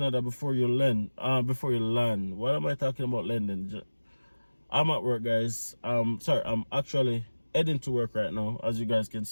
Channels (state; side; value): inverted; both; correlation -1.00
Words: before you land, what am I talking about landing? I'm at work, guys. Sorry, I'm actually heading to work right now, as you guys can